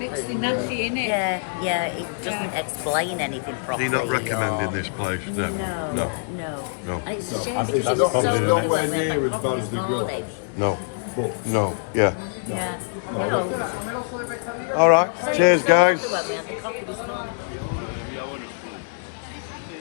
nasty, innit? Yeah, it doesn't explain anything Are properly. you not recommending or- this place? No, No. no. No. And it's a shame It's because it not, was probably it's the nowhere near as bad as the grill house, No. but No. Yeah. no, I don't think so. All right. Cheers, guys. Well, we had the coffee this morning.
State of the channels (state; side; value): silent; right; digital silence